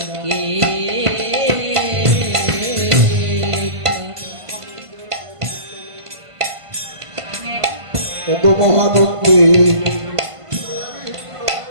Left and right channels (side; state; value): left; late; 1.5 ms